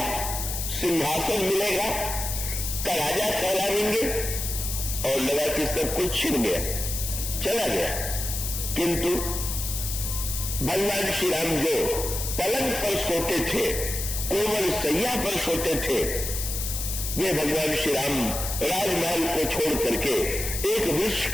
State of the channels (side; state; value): left; noise; hiss, 4 dB below the sound